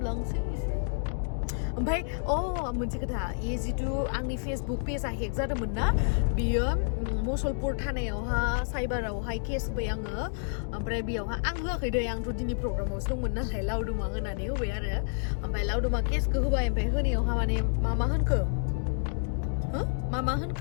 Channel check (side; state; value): right; silent; digital silence